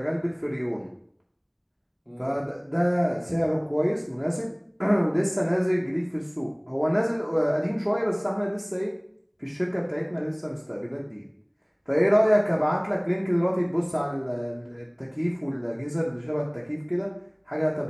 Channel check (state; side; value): identical; both; correlation 1.00